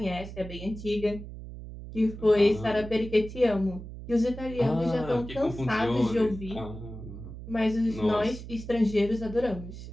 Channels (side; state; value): right; noise; hum, 12 dB below the sound